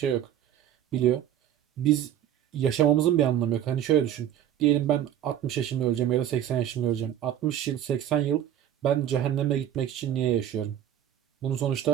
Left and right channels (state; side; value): quieter; left; 10.7 dB